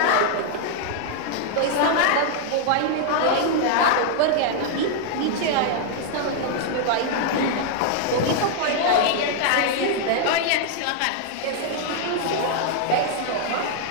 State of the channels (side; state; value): both; different; correlation 0.00